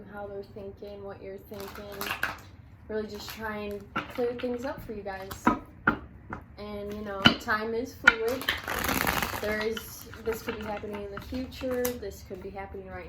how they're thinking, what you're thinking. Really just try and clear things up for you guys. And, you know, time is fluid. This could be happening in the future, this could be happening right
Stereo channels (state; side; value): identical; both; correlation 1.00